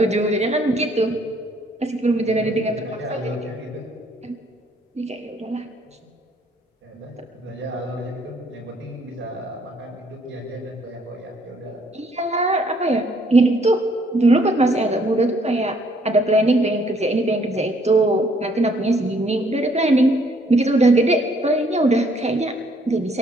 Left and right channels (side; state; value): both; normal; correlation 0.65